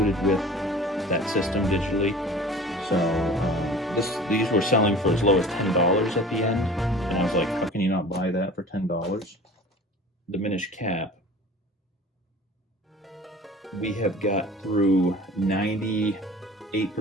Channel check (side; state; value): both; normal; correlation 0.42